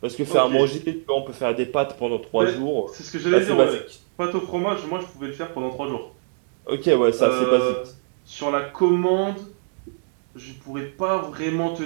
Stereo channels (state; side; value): silent; left; digital silence